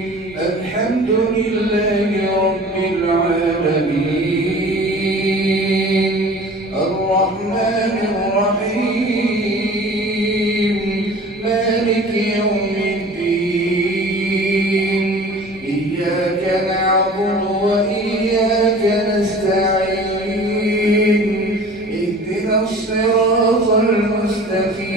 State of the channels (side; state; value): both; normal; correlation 0.43